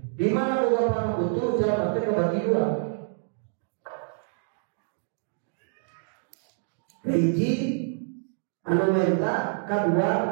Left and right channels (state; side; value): silent; left; digital silence